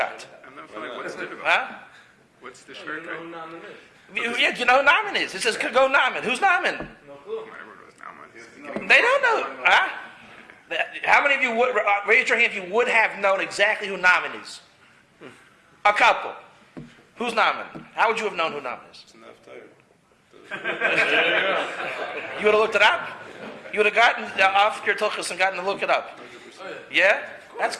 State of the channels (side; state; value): both; identical; correlation 1.00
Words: I'm not feeling what's difficult. Huh? What's the short guy? Yeah, you know who Naaman is. It says, go Naaman. Who's Naaman? My word was Naaman. They don't know. Huh? How many of you would, raise your hand if you would have known exactly who Naaman is? A couple. Who's Naaman? How would you have known who Naaman is? You would have looked it up? You would have gotten off your tuchus and gotten to look it up. Yeah? That's